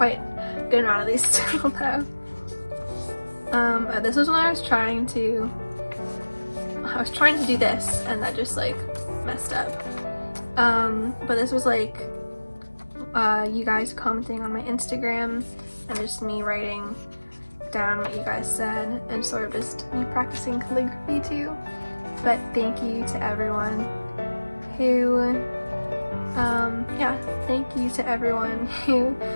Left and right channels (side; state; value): both; inverted; correlation -1.00